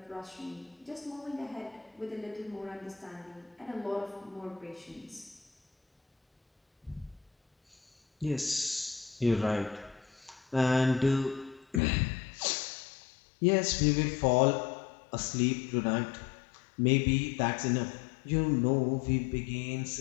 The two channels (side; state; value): right; drops out; at 11.8 s